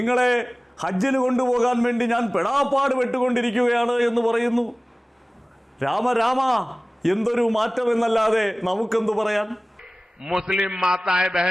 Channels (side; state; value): both; normal; correlation 0.98